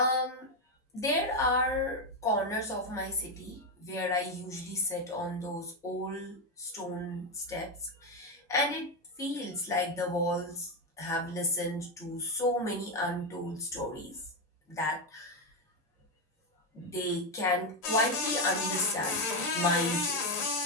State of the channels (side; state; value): both; normal; correlation 0.07